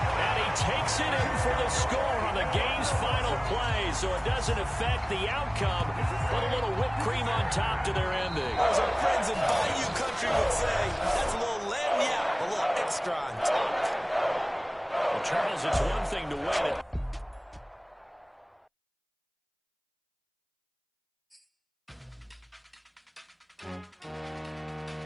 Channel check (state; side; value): identical; both; correlation 1.00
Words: And he takes it in for the score on the game's final play, so it doesn't affect the outcome, but a little whipped cream on top to their ending. As our friends in Bayou Country would say, that's a little lagniappe, a little extra on top. Well, Charles, it's one thing to win it.